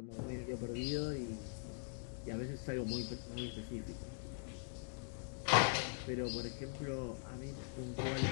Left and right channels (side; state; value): right; silent; digital silence